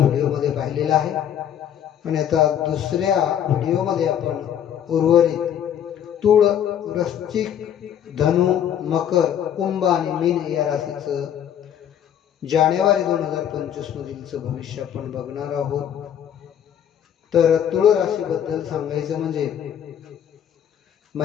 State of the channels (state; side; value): quieter; right; 9.7 dB